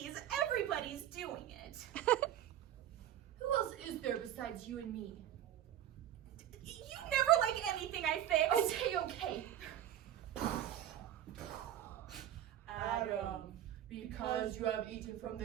everybody's doing it. Who else is there besides you and me? You never like anything I fix. Okay. Adam, because you have eaten from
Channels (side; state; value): left; quieter; 11.4 dB